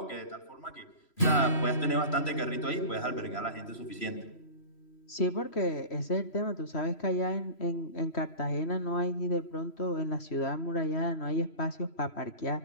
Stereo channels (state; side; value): late; right; 3.0 ms